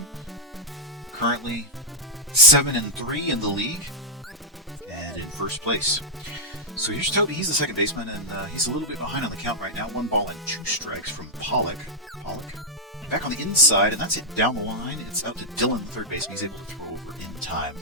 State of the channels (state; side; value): normal; both; correlation -0.05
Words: Currently 7-3 in the league and in first place. So here's Toby. He's the second baseman, and he's a little bit behind on the count right now. 1 ball and 2 strikes from Pollock. Back on the inside, and that's it down the line. It's out to Dylan, the third baseman. He's able to throw over in time